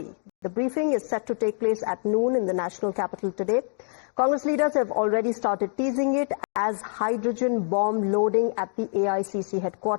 The briefing is set to take place at noon in the national capital today. Congress leaders have already started teasing it as hydrogen bomb loading at the AICC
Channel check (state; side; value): silent; right; digital silence